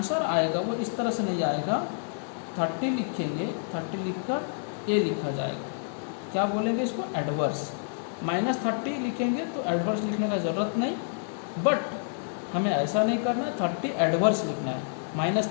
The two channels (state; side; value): silent; right; digital silence